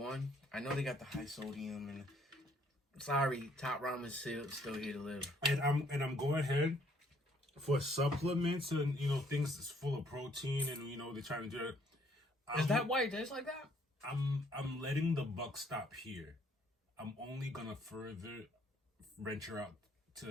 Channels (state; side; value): normal; both; correlation 0.65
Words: I know they got the high sodium and sorry, Top Ramen still here to live. And I'm going ahead for supplements and things that's full of protein and they're trying to do it. Is that why it tastes like that? I'm letting the buck stop here. I'm only gonna further venture out